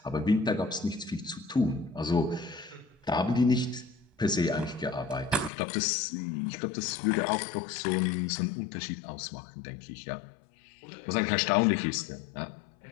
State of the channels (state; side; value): drops out; right; at 5.5 s